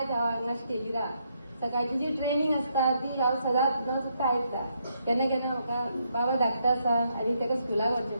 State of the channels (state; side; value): inverted; both; correlation -0.76